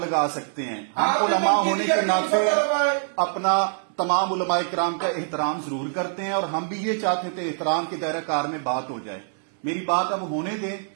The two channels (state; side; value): silent; left; 62 dB below the other